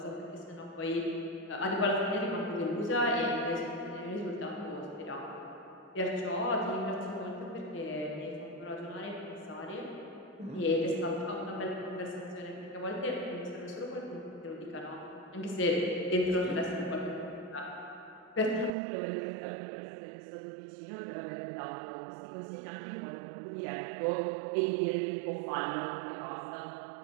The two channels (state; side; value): drops out; left; at 18.8 s